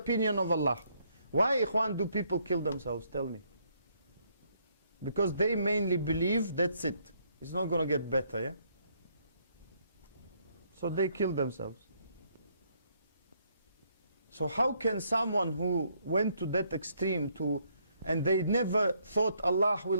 of Allah. Why, ikhwan, do people kill themselves? Tell me. Because they mainly believe that's it. It's not going to get better, yeah? So they kill themselves. So how can someone who went to that extreme and they never thought Allah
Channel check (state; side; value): inverted; both; correlation -0.70